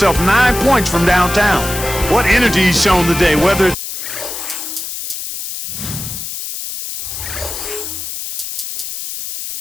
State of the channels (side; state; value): left; noise; hiss, 7 dB below the sound